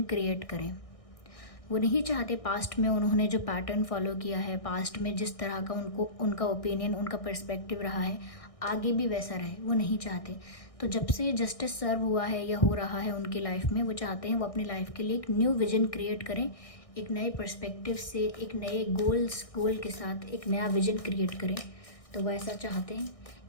क्रिएट करें। वो नहीं चाहते पास्ट में उन्होंने जो पैटर्न फॉलो किया है, पास्ट में जिस तरह का उनका ओपिनियन, उनका पर्सपेक्टिव रहा है, आगे भी वैसा रहे, वो नहीं चाहते। तो जब से जस्टिस सर्व हुआ है या हो रहा है उनकी लाइफ में, वो चाहते हैं वो अपनी लाइफ के लिए एक न्यू विजन क्रिएट करें, एक नए पर्सपेक्टिव से, एक नए गोल के साथ एक नया विजन क्रिएट करें। तो वो ऐसा चाहते हैं,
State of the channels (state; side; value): late; right; 1.6 ms